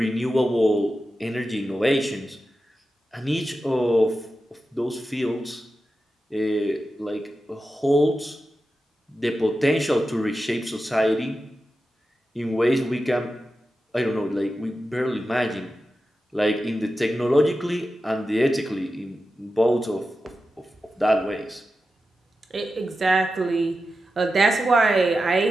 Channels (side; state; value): both; normal; correlation 0.91